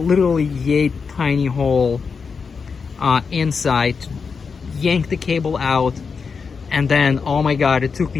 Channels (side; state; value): right; quieter; 5.4 dB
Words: yay tiny hole inside, to yank the cable out. And then, oh my God, it took